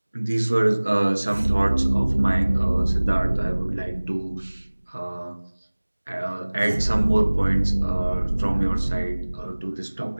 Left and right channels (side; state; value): both; inverted; correlation -1.00